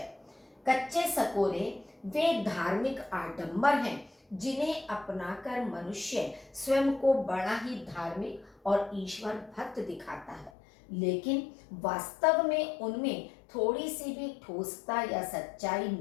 कच्चे सकोरे वे धार्मिक आडंबर हैं जिन्हें अपनाकर मनुष्य स्वयं को बड़ा ही धार्मिक और ईश्वर भक्त दिखाता है, लेकिन वास्तव में उनमें थोड़ी सी भी ठोसता या सच्चाई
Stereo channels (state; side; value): drops out; right; at 10.5 s